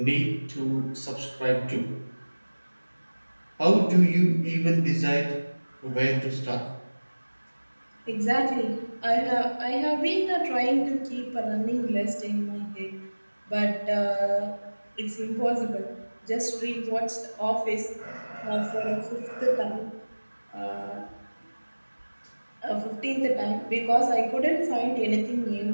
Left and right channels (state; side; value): inverted; both; correlation -1.00